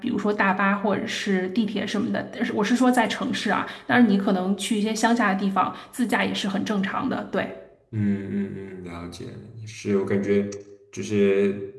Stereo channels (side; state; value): both; identical; correlation 1.00